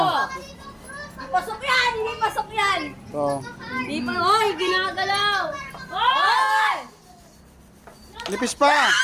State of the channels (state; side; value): identical; both; correlation 1.00